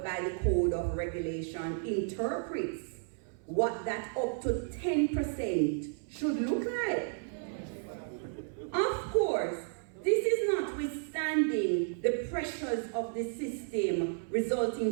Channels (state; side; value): silent; left; 56 dB below the other